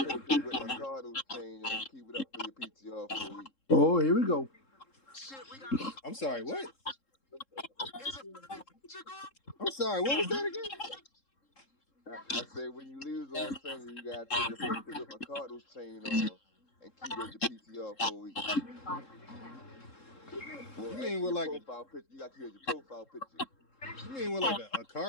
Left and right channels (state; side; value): late; right; 3.7 ms